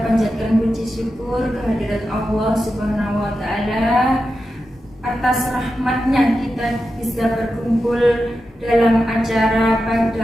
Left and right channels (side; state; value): both; normal; correlation 0.90